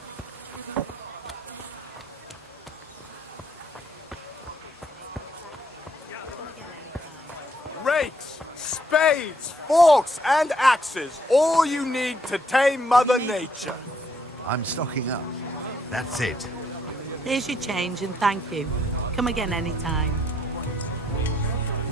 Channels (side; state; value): both; normal; correlation 0.70